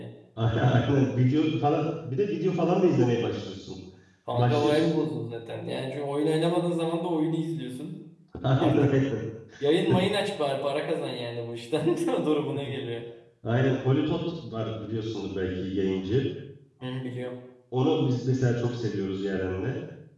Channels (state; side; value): identical; both; correlation 1.00